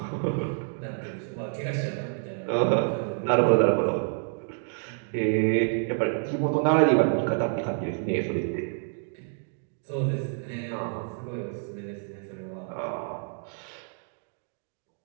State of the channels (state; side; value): silent; left; 59 dB below the other